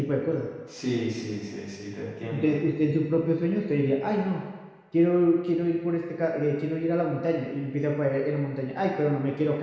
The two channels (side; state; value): both; identical; correlation 1.00